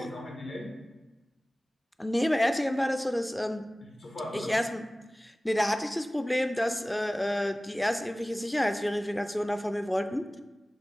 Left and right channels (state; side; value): normal; both; correlation 0.98